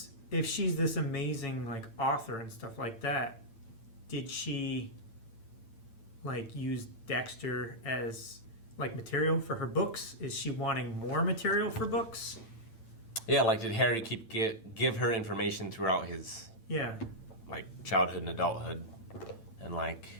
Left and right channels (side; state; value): right; late; 8.9 ms